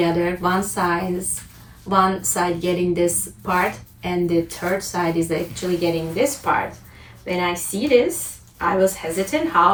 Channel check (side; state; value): both; identical; correlation 1.00